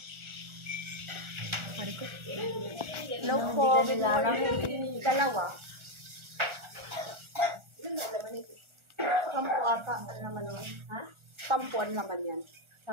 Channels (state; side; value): late; left; 1.4 ms